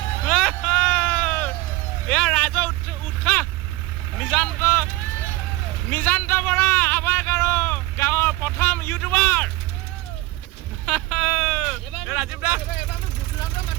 এয়া ৰাইজৰ উৎসাহ নিজান্ত বৰা আৱাক আৰু গাঁৱৰ প্ৰথম ইউটিউবাৰ ৰাজীৱ দা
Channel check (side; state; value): left; quieter; 19.4 dB